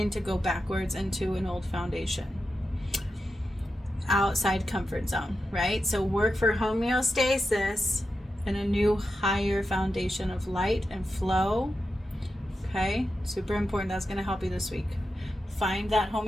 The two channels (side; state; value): both; normal; correlation 0.89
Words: to go backwards into an old foundation. Outside comfort zone, right? So work for homeostasis and a new higher foundation of light and flow. Okay, super important. That's going to help you this week. Find that